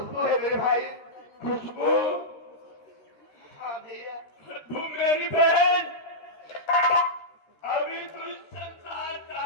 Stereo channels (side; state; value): right; late; 13 ms